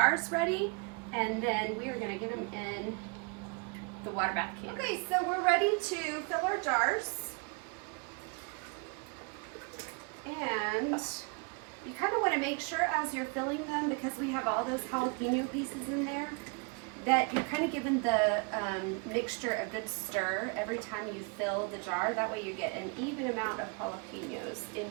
ready, and then we are going to get them in the water bath can. Okay, so we're ready to fill our jars. And you kind of want to make sure as you're filling them, because we have all those jalapeno pieces in there, that you're kind of giving the mixture a good stir every time you fill the jar. That way you get an even amount of jalapenos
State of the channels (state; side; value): quieter; left; 33.1 dB